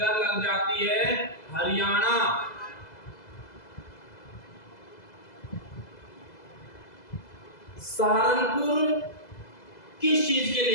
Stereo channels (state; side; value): late; right; 2.0 ms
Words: लग जाती है हरियाणा। सहारनपुर किस चीज के